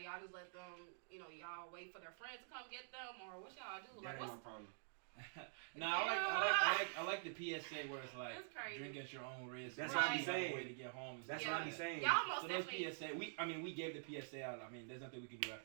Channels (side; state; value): left; silent; digital silence